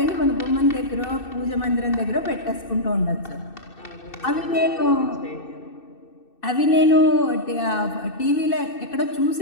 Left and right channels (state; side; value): late; right; 2.6 ms